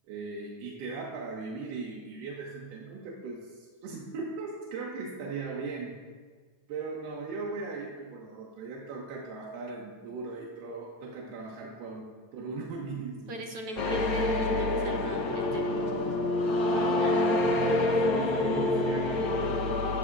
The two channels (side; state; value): left; late; 9.1 ms